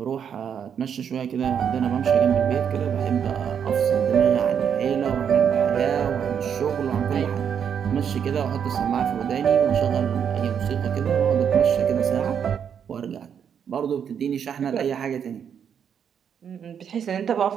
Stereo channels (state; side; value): quieter; left; 7.9 dB